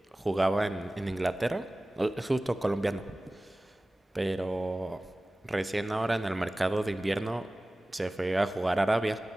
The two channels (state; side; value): normal; both; correlation 0.97